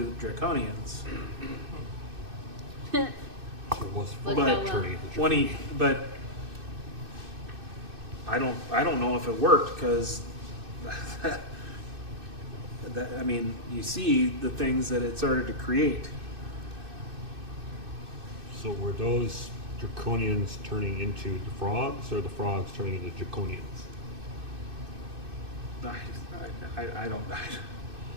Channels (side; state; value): left; late; 2.6 ms